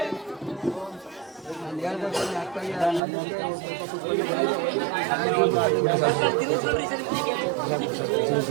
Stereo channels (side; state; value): left; drops out; at 3.0 s